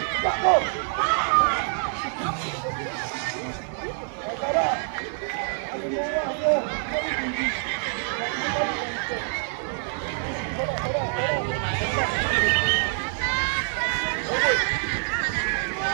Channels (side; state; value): left; silent; 60 dB below the other